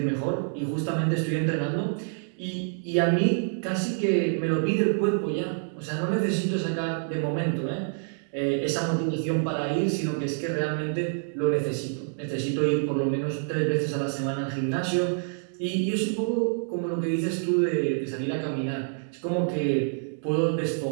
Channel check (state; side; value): silent; left; digital silence